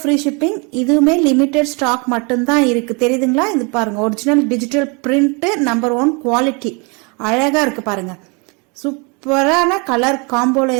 free shipping. இதுவுமே லிமிடெட் ஸ்டாக் மட்டும்தான் இருக்கு. தெரியுதுங்களா? இது பாருங்க, original digital print number 1 quality. அழகா இருக்கு பாருங்க. சூப்பரான கலர் காம்போல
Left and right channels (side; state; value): left; quieter; 31.6 dB